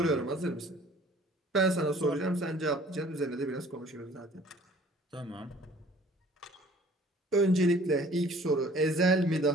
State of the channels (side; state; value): both; normal; correlation 0.53